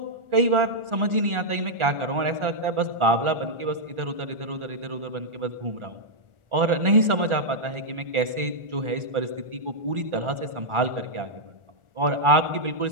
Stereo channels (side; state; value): left; late; 1.4 ms